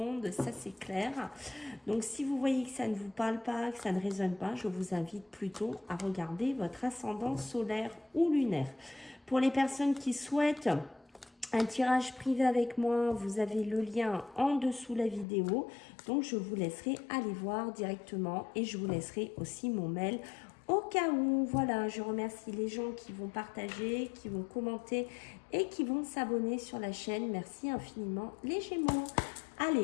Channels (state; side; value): drops out; right; at 15.2 s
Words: ça c'est clair. Donc si vous voyez que ça ne vous parle pas, que ça ne résonne pas, je vous invite plutôt à regarder votre ascendant solaire ou lunaire. Pour les personnes qui souhaitent un tirage privé avec moi, vous avez le lien en dessous la vidéo. Donc, je vous laisserai aller voir directement et je vous laisserai aussi mon mail au cas où. Voilà, je remercie les gens qui vont partager, qui vont commenter et qui vont s'abonner sur la chaîne. Merci infiniment les Gémeaux.